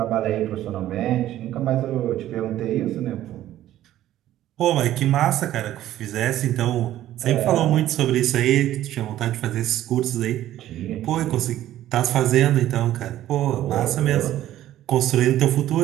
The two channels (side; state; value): left; quieter; 13.3 dB